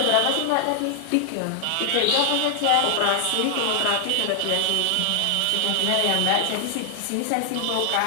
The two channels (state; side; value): different; both; correlation 0.00